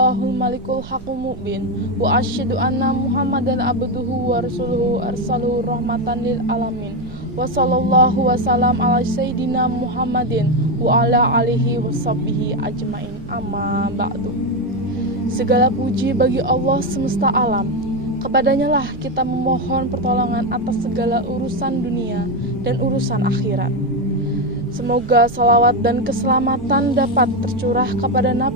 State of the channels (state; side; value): noise; right; rumble, 15 dB below the sound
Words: malikul haqqul mubin wa asyhadu anna Muhammadan abduhu wa rasuluhu arsaluhu rahmatan lil alamin. Wa sallallahu wasallam ala sayyidina Muhammadin wa ala alihi washabbihi ajmain. Amma ba'du. Segala puji bagi Allah semesta alam. Kepadanya lah kita memohon pertolongan atas segala urusan dunia dan urusan akhirat. Semoga salawat dan keselamatan dapat tercurah kepada